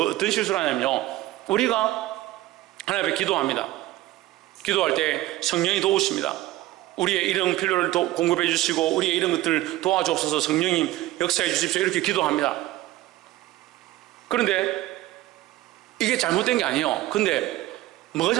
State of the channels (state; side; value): quieter; left; 16.3 dB